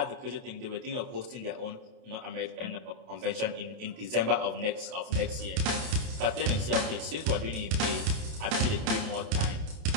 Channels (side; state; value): left; late; 30 ms